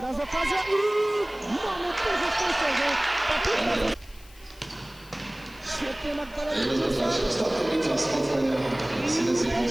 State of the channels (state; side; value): noise; left; hiss, 24 dB below the sound